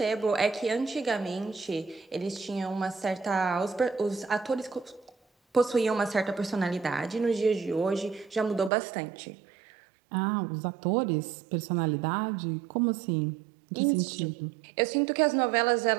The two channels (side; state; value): left; drops out; at 8.7 s